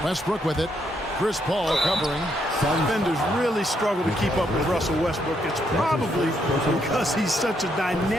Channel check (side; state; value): both; normal; correlation 0.75